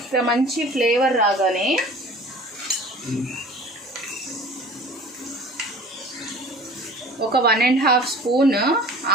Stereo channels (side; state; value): both; normal; correlation 0.44